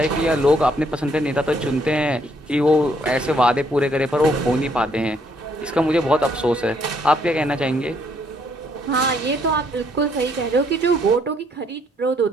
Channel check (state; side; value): normal; both; correlation 0.69